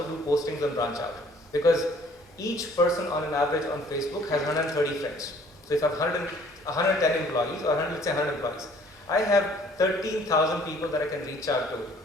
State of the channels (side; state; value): both; normal; correlation 0.57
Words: do postings on branch out. Because each person on an average on Facebook has 130 friends. So if I have 110 employees, or let's say 100 employees, I have 13,000 people that I can reach out to.